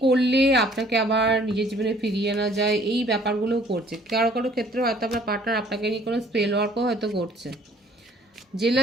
করলে আপনাকে আবার নিজের জীবনে ফিরিয়ে আনা যায় এই ব্যাপারগুলো করছে। কারো কারো ক্ষেত্রে হয়তো আপনার পার্টনার আপনাকে নিয়ে কোনো স্পেল ওয়ার্কও হয়তো করছে,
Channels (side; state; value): both; normal; correlation 0.57